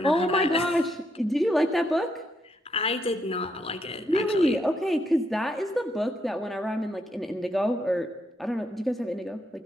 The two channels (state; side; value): normal; both; correlation 0.77